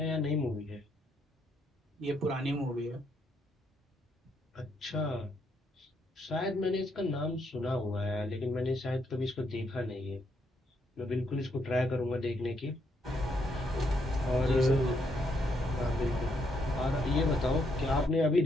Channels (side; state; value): both; normal; correlation 0.75